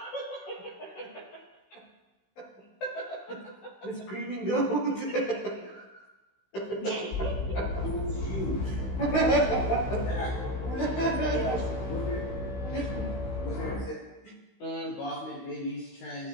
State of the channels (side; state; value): right; late; 16 ms